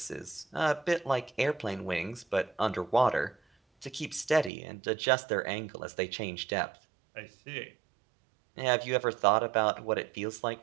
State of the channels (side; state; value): left; drops out; at 4.5 s